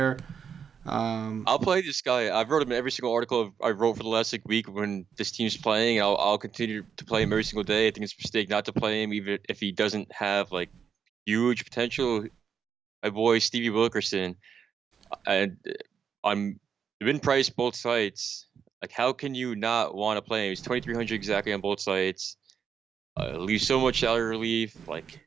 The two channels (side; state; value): left; quieter; 7.2 dB